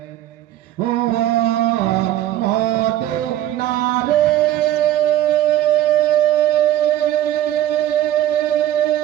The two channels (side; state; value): left; quieter; 12.9 dB